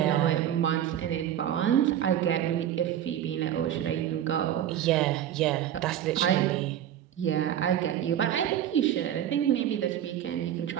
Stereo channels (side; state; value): left; quieter; 10.9 dB